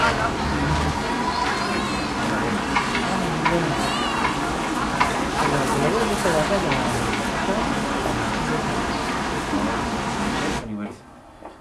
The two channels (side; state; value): both; identical; correlation 1.00